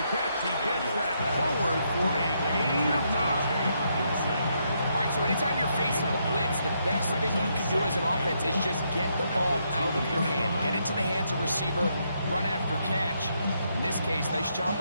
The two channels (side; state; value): both; inverted; correlation -0.77